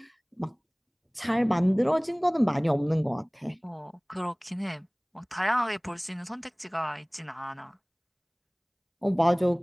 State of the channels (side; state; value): both; identical; correlation 1.00